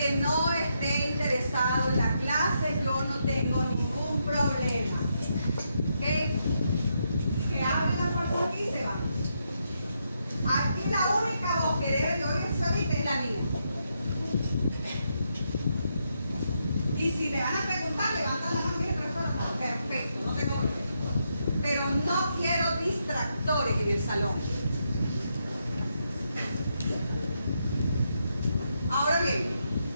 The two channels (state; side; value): inverted; both; correlation -0.81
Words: no esté interesado en la clase, yo no tengo ningún problema. ¿Ok? Que hable la fuerza aquí y se va. Aquí la única voz que debe de oírse ahorita es la mía. Y si me van a preguntar, levantan la mano y profesora, perfecto, no tengo problema. Pero no quiero distractores en el salón. Ahora bien,